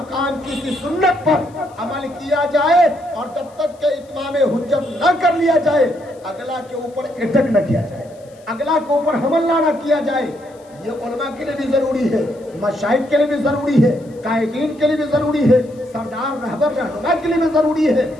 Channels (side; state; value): left; noise; hiss, 30 dB below the sound